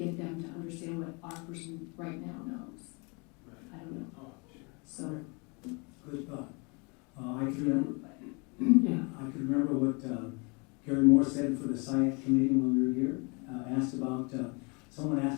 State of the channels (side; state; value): right; quieter; 30.9 dB